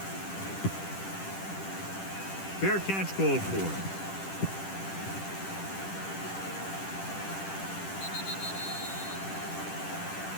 Fair catch called for.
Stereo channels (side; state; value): right; late; 10 ms